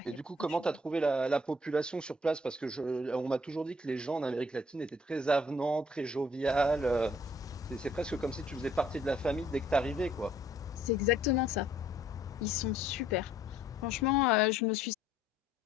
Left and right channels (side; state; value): both; normal; correlation 0.61